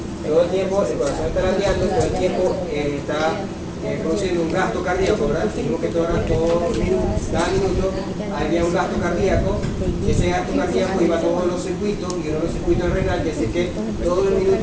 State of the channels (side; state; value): both; identical; correlation 1.00